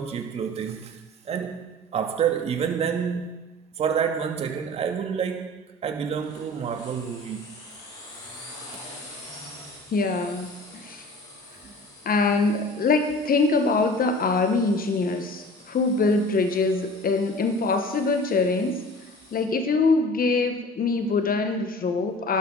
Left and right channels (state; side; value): normal; both; correlation 0.42